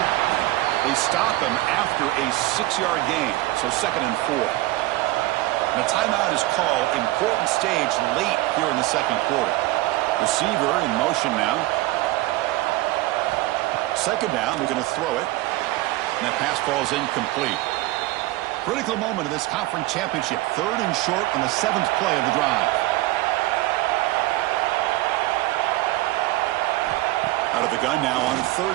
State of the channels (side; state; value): left; quieter; 18.5 dB